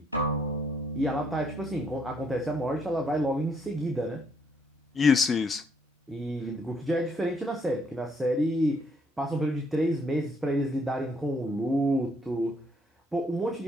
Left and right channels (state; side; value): normal; both; correlation 0.70